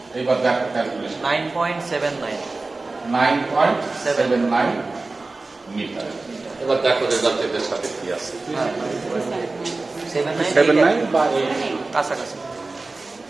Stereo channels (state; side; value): quieter; left; 3.4 dB